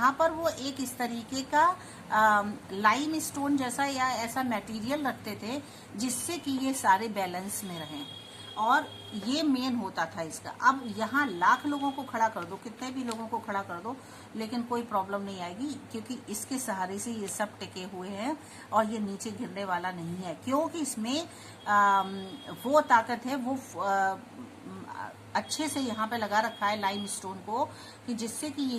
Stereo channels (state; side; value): identical; both; correlation 1.00